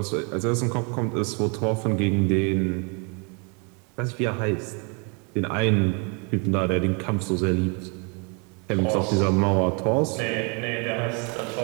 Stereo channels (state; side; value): quieter; left; 34.8 dB